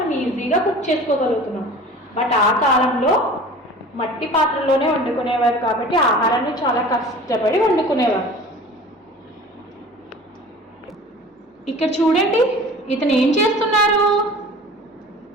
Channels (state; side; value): normal; both; correlation 0.42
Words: ఈజీగా కుక్ చేసుకోగలుగుతున్నాం. బట్ ఆ కాలంలో మట్టి పాత్రలోనే వండుకునేవారు కాబట్టి ఆహారాన్ని చాలా కష్టపడి వండుకునేవారు. ఇక్కడ చూడండి ఇతను ఏం చేస్తున్నారు?